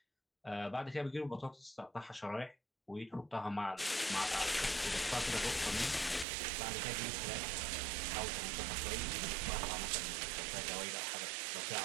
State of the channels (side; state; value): left; drops out; at 6.2 s